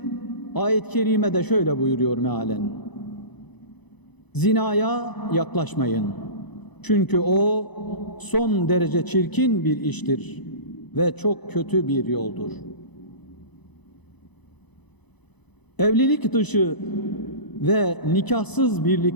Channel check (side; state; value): right; late; 0.99 ms